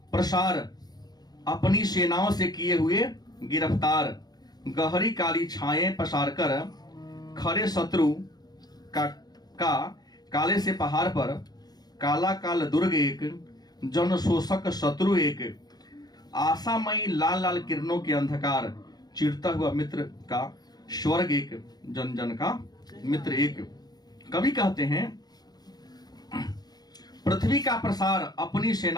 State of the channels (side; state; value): right; late; 0.19 ms